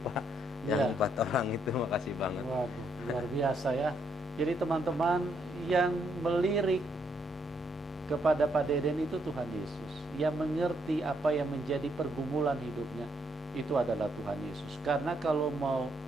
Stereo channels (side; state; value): both; normal; correlation 0.74